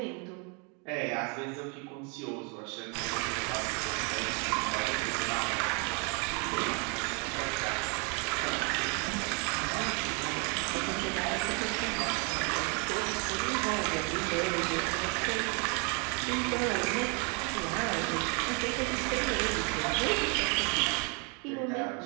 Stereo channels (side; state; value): left; quieter; 34.7 dB